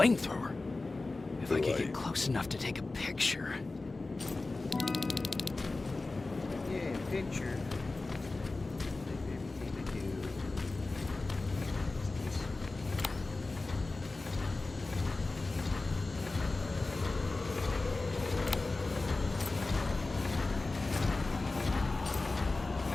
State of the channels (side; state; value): right; quieter; 3.3 dB